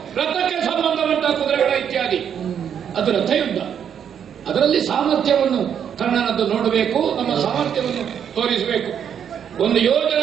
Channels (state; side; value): quieter; left; 8.4 dB